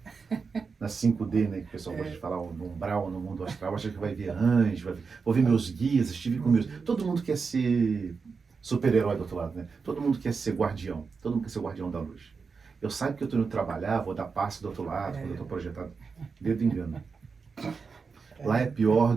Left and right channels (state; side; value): quieter; left; 5.1 dB